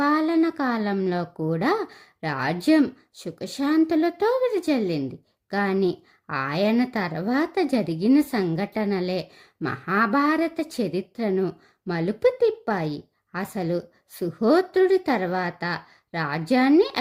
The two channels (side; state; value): both; identical; correlation 1.00